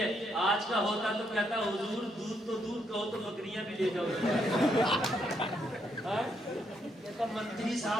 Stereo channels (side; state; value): both; normal; correlation 0.76